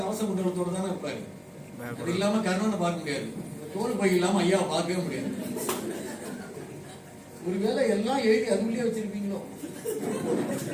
கவச குண்டலத்தோட தானே இருப்பாரு. அது இல்லாம கர்ணனை பார்க்க முடியாது. தோல் பை இல்லாம ஐயாவை பார்க்கவே முடியாது. ஒருவேளை எல்லாம் எழுதி அதுக்குள்ளே வச்சிருப்பீங்களோ.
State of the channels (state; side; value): identical; both; correlation 1.00